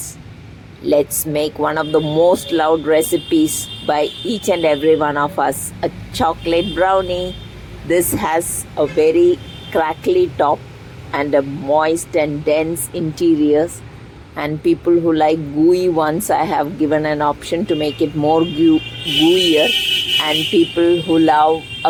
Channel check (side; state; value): both; identical; correlation 1.00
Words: Let's make one of the most loved recipes by each and every one of us, a chocolate brownie. This has a very crackly top and a moist and dense interiors. And people who like gooey ones, I have given an option to make it more gooier. And people who love